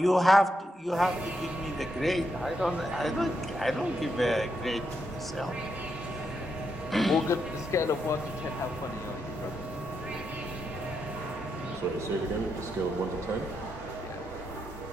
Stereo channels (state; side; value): normal; both; correlation 0.82